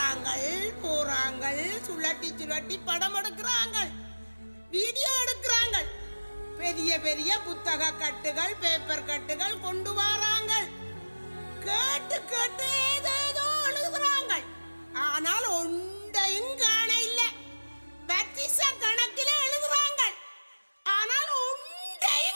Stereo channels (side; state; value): both; inverted; correlation -1.00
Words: போறாங்கள், சுழட்டி சுழட்டி படம் எடுக்கிறாங்க, வீடியோ எடுக்கிறாங்க, பெரிய பெரிய புத்தக கட்டுகள் பேப்பர் கட்டுகள் கொண்டு வராங்க, கேட்டு கேட்டு ஏதேதோ எழுதுறாங்க. ஆனால் ஒன்றையும் காண இல்ல. பத்திச கணக்கில் எழுதுறாங்க, ஆனால்